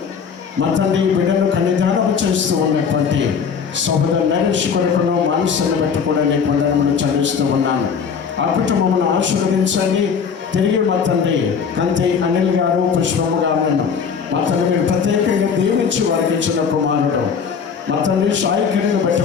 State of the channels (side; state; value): right; quieter; 6.4 dB